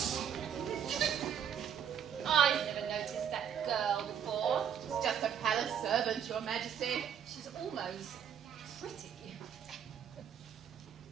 I've never noticed that girl before. She's just a palace servant, Your Majesty. She's almost pretty.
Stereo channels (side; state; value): left; quieter; 8.4 dB